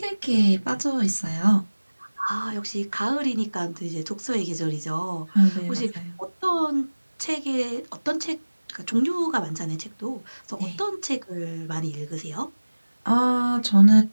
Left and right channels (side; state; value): both; inverted; correlation -1.00